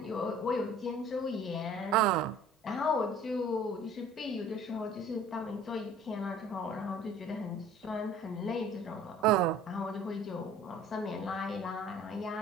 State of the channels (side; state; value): both; normal; correlation 0.49